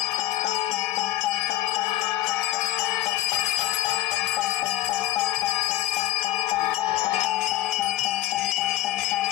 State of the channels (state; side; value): quieter; right; 15.1 dB